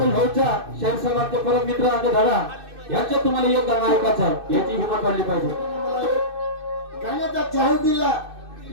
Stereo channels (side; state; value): left; late; 2.6 ms